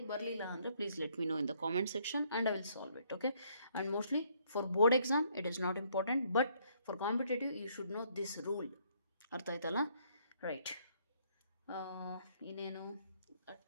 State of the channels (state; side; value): inverted; both; correlation -0.67